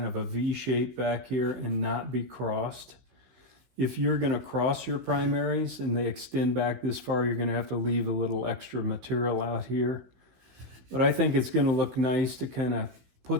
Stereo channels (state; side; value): late; left; 16 ms